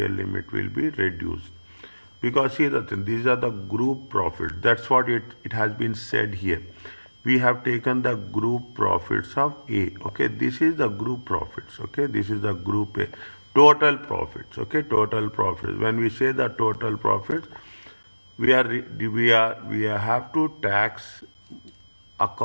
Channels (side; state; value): both; inverted; correlation -1.00